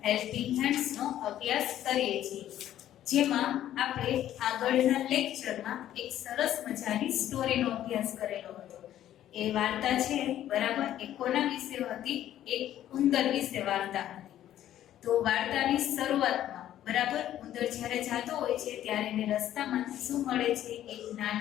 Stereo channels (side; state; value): right; quieter; 12.1 dB